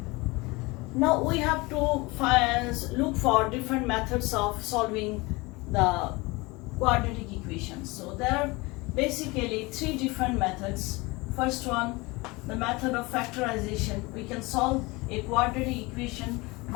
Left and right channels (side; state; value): right; quieter; 24.1 dB